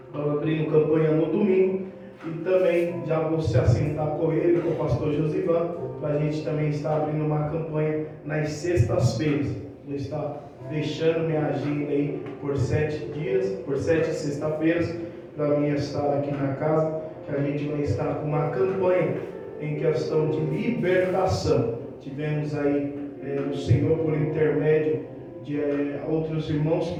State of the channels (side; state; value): both; identical; correlation 1.00